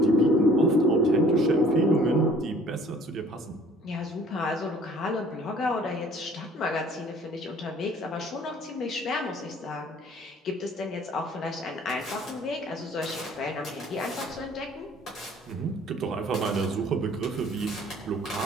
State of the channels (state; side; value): normal; both; correlation 0.54